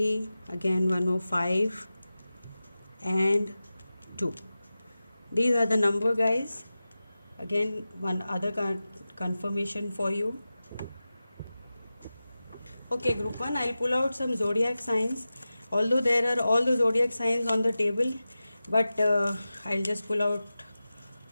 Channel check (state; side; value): inverted; both; correlation -0.95